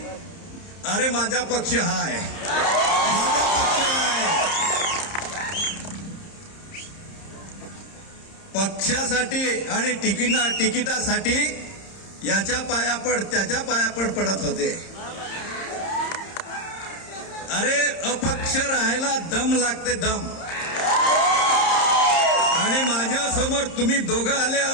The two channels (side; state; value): right; late; 30 ms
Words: अरे माझा पक्ष हा आहे, माझा पक्ष आहे। पक्षासाठी आणि तिकिटासाठी याच्या पायापड त्याच्या पायापड पडत होते। अरे अपक्ष राहायला दम लागते, दम। आणि माझ्या समोर तुम्ही दोघं आले,